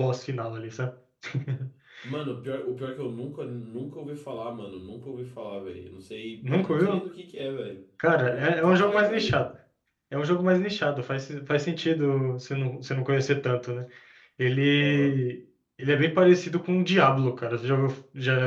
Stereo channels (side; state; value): both; identical; correlation 1.00